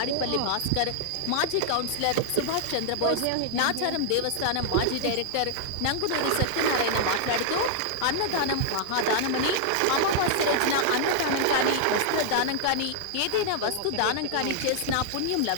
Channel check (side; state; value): both; different; correlation -0.01